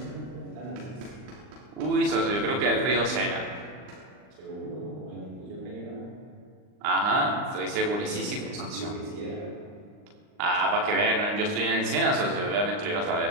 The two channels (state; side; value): late; left; 39 ms